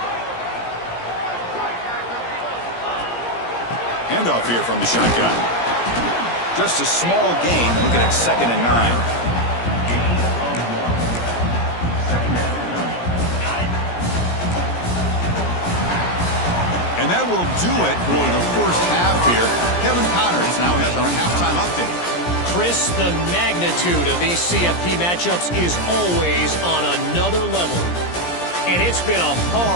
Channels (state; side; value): late; right; 17 ms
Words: Handoff here from the shotgun. Just a small gain, looking at 2nd and 9. And that will do it for the first half here. Kevin Connors now has our halftime update. Chris, the magnitude of these CFP matchups is always on another level. And it's been a